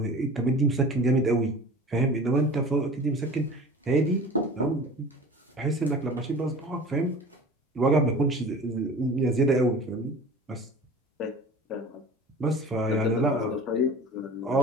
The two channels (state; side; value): normal; both; correlation 0.40